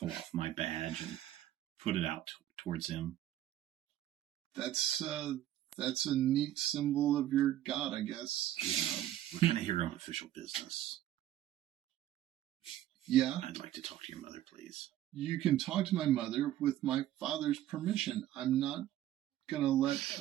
off my badge and put it out towards him. That's a neat symbol of your god, I guess. We're kind of here on official business. Yeah. I'd like to talk to your mother, please. You can talk to my mother with my father's permission. I'm not going to let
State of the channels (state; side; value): quieter; left; 12.9 dB